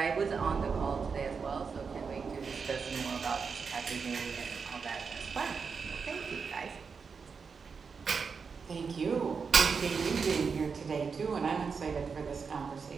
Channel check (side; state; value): left; quieter; 5.5 dB